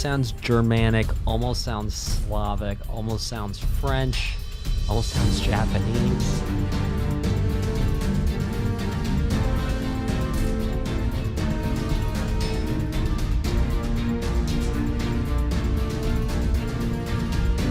sounds Germanic, almost sounds Slavic, almost sounds French, almost sounds Japanese.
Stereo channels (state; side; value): identical; both; correlation 1.00